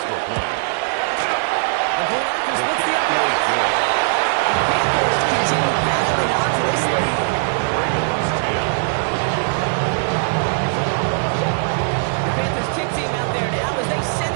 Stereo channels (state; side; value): silent; left; 59 dB below the other